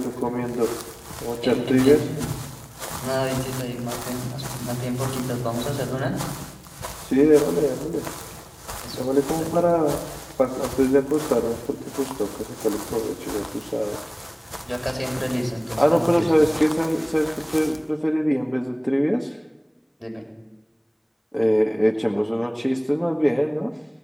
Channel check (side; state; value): both; identical; correlation 1.00